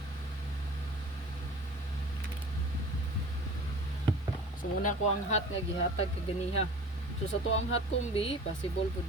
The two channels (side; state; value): both; normal; correlation 0.41